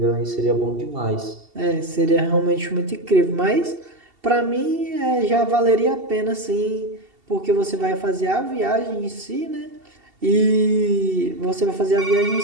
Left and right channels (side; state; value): left; late; 2.7 ms